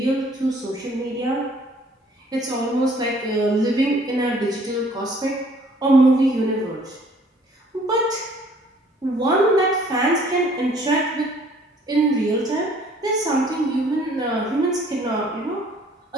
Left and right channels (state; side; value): normal; both; correlation 0.58